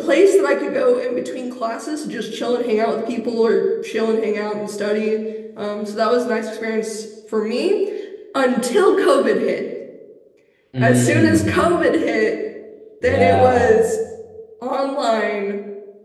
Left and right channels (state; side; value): identical; both; correlation 1.00